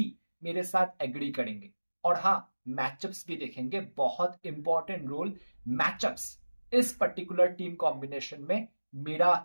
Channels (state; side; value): inverted; both; correlation -1.00